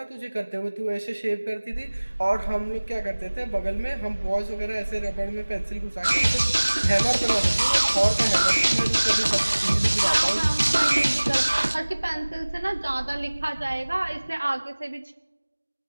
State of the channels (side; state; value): both; inverted; correlation -1.00